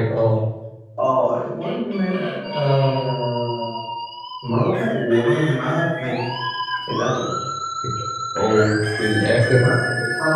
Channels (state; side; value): identical; both; correlation 1.00